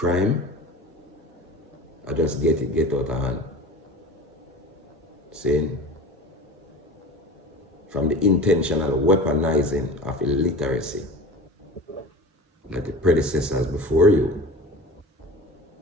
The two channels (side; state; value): both; normal; correlation 0.35